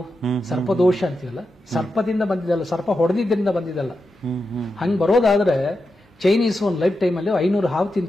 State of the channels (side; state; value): both; normal; correlation 0.88